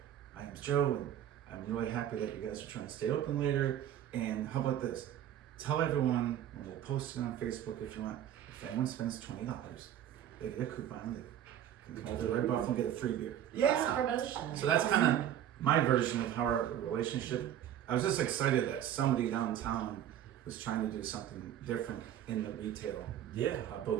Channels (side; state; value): left; quieter; 10.8 dB